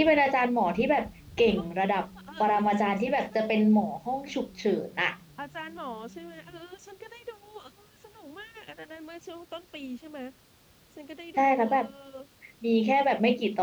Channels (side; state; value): both; identical; correlation 1.00